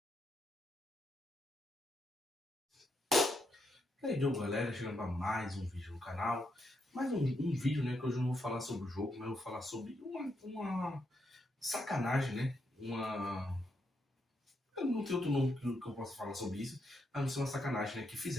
E aí, Diogo, galera, chegando para mais um vídeo no canal. Mais um vídeo, né, que hoje eu não vou falar sobre o jogo, mas eu vou falar sobre uma sacanagem, né? Eu não tenho outro nome que eu possa falar sobre isso, a não ser uma sacanagem, né, que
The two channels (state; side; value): normal; both; correlation 0.80